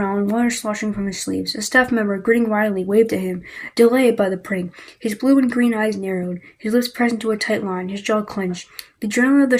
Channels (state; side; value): identical; both; correlation 1.00